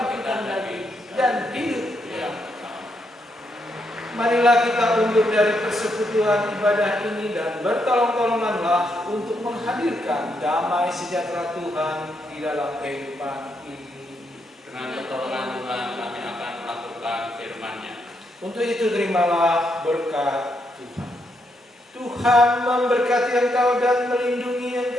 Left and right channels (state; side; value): normal; both; correlation 0.79